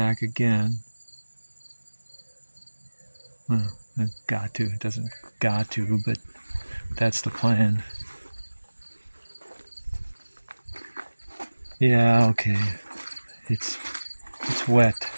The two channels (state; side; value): inverted; both; correlation -1.00